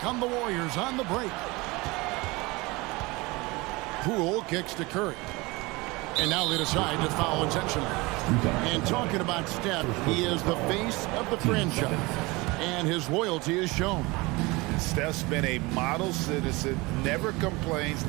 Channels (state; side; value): quieter; left; 23.7 dB